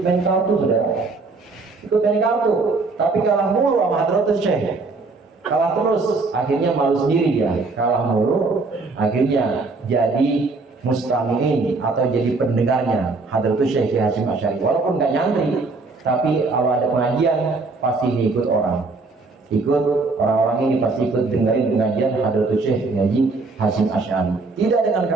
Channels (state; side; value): quieter; left; 3.8 dB